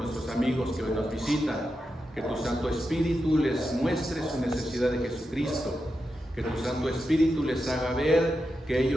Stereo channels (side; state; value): both; normal; correlation 0.88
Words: amigos que hoy nos visitan, que tu Santo Espíritu les muestre su necesidad de Jesucristo, que tu Santo Espíritu les haga ver que